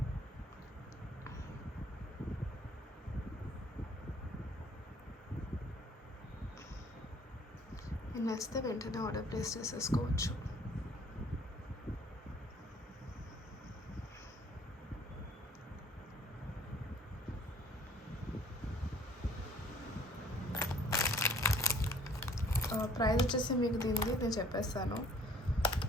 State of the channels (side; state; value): both; normal; correlation 0.55